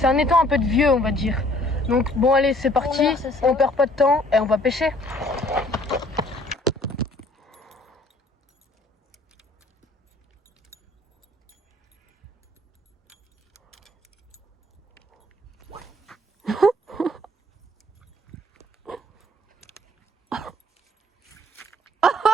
un étang un peu de vieux, on va dire. Donc bon, allez, c'est parti. On perd pas de temps et on va pêcher.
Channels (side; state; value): both; normal; correlation 0.58